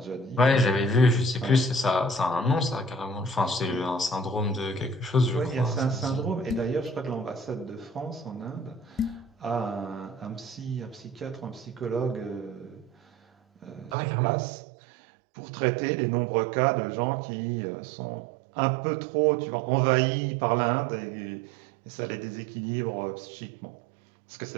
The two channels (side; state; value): left; drops out; at 14.0 s